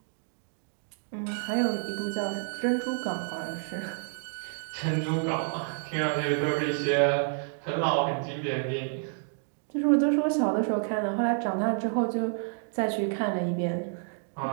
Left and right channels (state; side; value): silent; left; 58 dB below the other